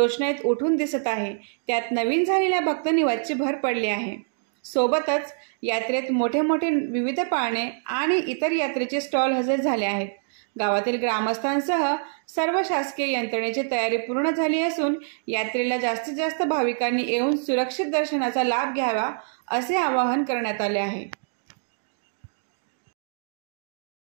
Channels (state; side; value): silent; left; digital silence